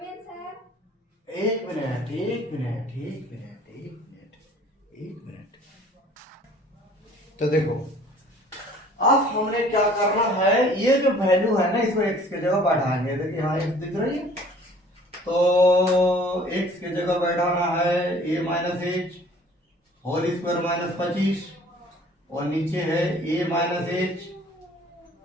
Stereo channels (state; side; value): normal; both; correlation 0.52